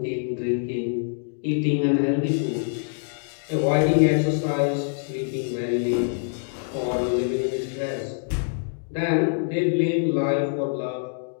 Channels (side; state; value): right; silent; digital silence